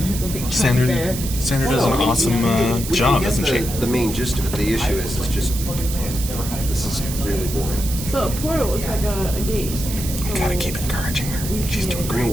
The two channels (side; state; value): right; noise; hiss, 8 dB below the sound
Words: a big chunk Sandra, there. Sandra does an Well, awesome we job, can doesn't get she? the main gist of it. The issue is, it's just, this is really boring. So a portal is like a gate. So Gotta keep encouraging her. She's doing And great. what